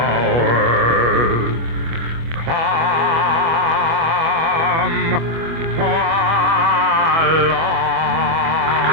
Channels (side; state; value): left; late; 25 ms